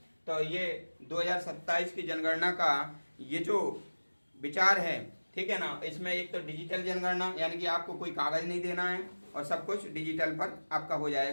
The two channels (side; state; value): both; inverted; correlation -1.00